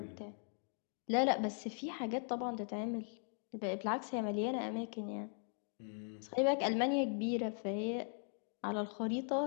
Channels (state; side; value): silent; right; 52 dB below the other